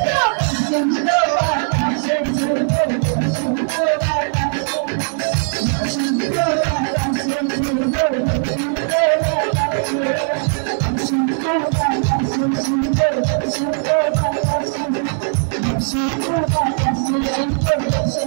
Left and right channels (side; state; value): left; silent; digital silence